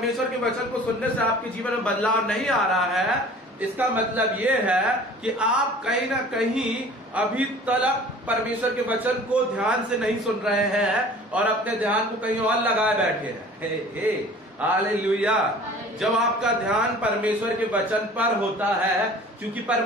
के वचन को सुनने से आपके जीवन में बदलाव नहीं आ रहा है, इसका मतलब ये है कि आप कहीं ना कहीं अभी तक परमेश्वर के वचन को ध्यान से नहीं सुन रहे हैं और अपने ध्यान को कहीं और लगाए बैठे हैं। हालेलुया। जब आपका ध्यान परमेश्वर के वचन पर होता है, क्योंकि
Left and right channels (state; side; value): normal; both; correlation 0.46